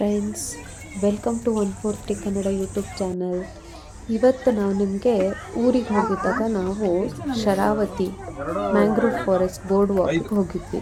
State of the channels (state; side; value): identical; both; correlation 1.00